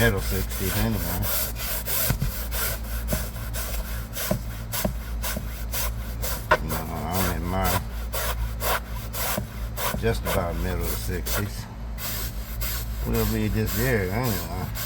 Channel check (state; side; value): identical; both; correlation 1.00